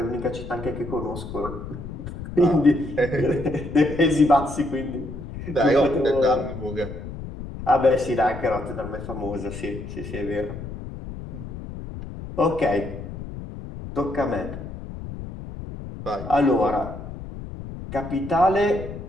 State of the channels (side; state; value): left; noise; rumble, 10 dB below the sound